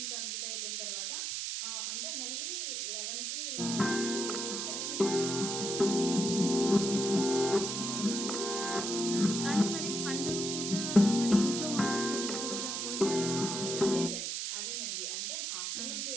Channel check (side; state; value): right; noise; hiss, 2 dB below the sound